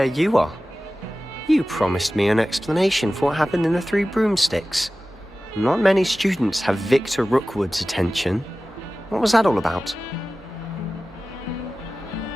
you are. You promised me an explanation for what happened in the Three Broomsticks. Not many students have Victor Rookwood's attention. What was that all about?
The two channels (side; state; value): both; normal; correlation 0.96